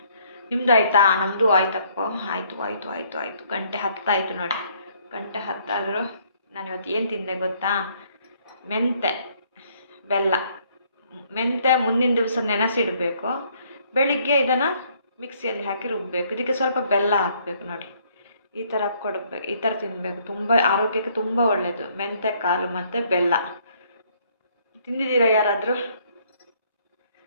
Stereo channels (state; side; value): inverted; both; correlation -0.65